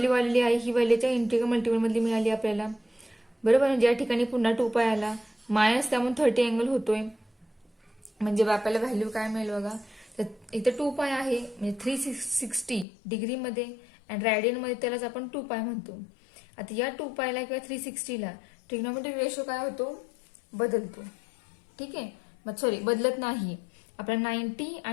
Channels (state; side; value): drops out; right; at 12.9 s